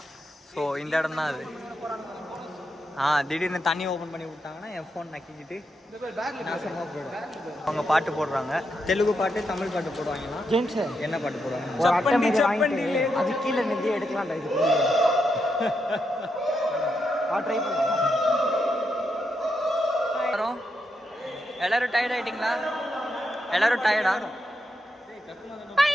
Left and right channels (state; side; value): normal; both; correlation 0.83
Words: ஸோ இந்த இடம் தான் அது. திடீர்னு தண்ணி ஓப்பன் பண்ணி விட்டாங்கன்னா என் ஃபோன் நக்கிக்கிட்டு நாசமாக போயிடும். அவங்க பாட்டு போடுறாங்க, தெலுங்கு பாட்டு தமிழ் பாட்டு போடுவாங்கன்னா ஜென்ஸ் என்ன பாட்டு போடுவாங்க? அது கீழே நிதி எடுக்கலாம்டா. இது ட்ரை பண்ணலாம். எல்லாரும் டயர்ட் ஆயிட்டீங்களா? எல்லாரும் டயர்டா?